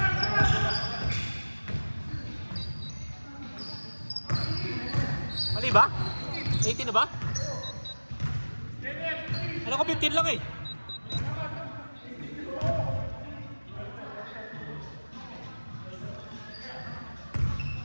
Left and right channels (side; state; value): both; inverted; correlation -1.00